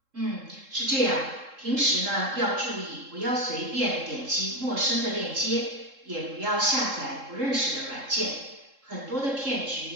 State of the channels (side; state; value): left; late; 3.7 ms